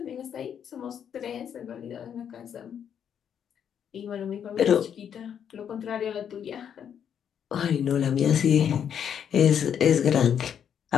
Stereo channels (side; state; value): right; quieter; 8.5 dB